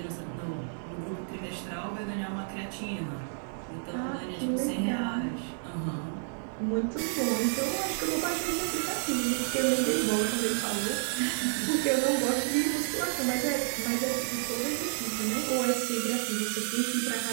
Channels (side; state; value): left; silent; digital silence